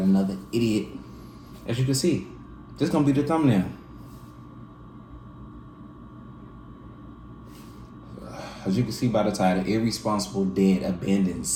another idiot. As you can see, this is gonna be the thumbnail. As you can see by the title, Irresponsible Dad Abandons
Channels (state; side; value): identical; both; correlation 1.00